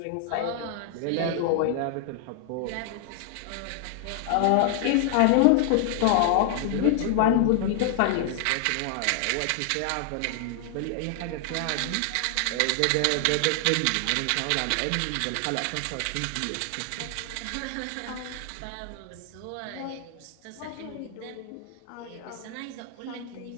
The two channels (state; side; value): different; both; correlation 0.00